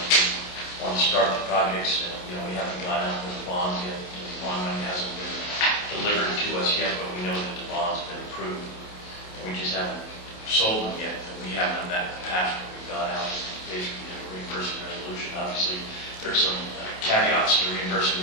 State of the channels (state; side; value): late; right; 28 ms